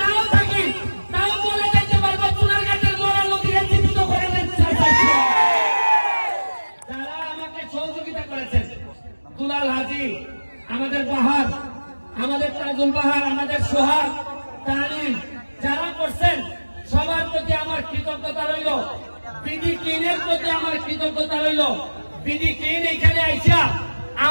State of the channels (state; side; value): inverted; both; correlation -1.00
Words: নাও থাকি, তাও বলে যাইতে পারবো সোনারঘাটের মরা নদীকে জীবিত করে যারা আমাকে সহযোগিতা করেছেন। দুলাল হাজি, আমাদের বাহার, আমাদের তাজুল বাহার, আমাদের সোহাগ, তানিম, যারা করছেন সবার প্রতি আমার কৃতজ্ঞতা রইল। বিডি ক্লিনের প্রতি আমার কৃতজ্ঞতা রইল। বিডি ক্লিন এখানে আইসা